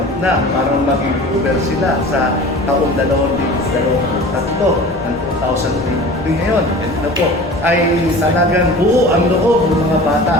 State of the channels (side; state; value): left; noise; rumble, 18 dB below the sound